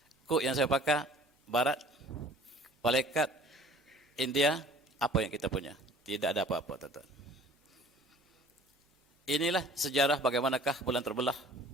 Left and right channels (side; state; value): both; normal; correlation 0.49